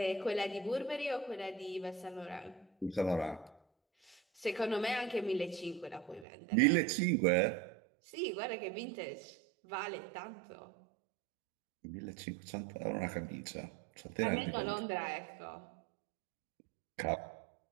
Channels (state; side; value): drops out; left; at 6.2 s